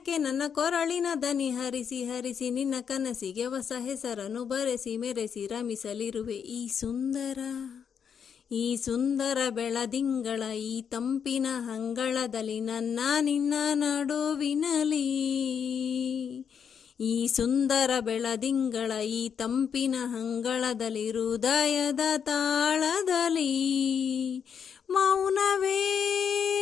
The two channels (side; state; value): right; quieter; 7.3 dB